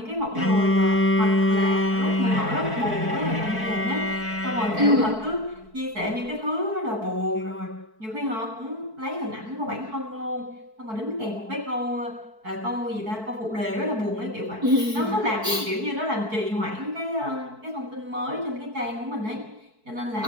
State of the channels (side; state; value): left; late; 4.6 ms